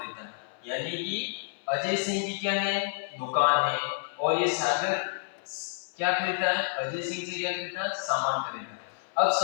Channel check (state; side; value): silent; right; 58 dB below the other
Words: है। यानी कि अजय सिंह की क्या है? दुकान है, और ये सागर क्या खरीदता है? अजय सिंह से क्या खरीदता है? सामान खरीदता है। अब